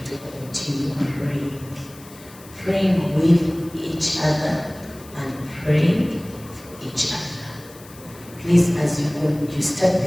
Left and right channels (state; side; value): noise; left; hiss, 21 dB below the sound